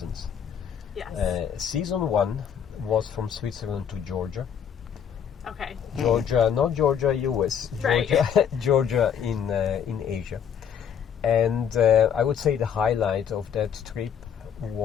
Yes. Season 1 was from Switzerland to Georgia. Okay. Georgia, not Georgia, US. Right. Georgia in Asia. And I would say the highlight of that trip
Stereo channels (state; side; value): quieter; right; 8.1 dB